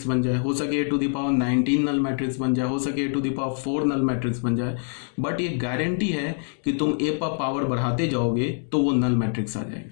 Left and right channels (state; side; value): silent; right; 58 dB below the other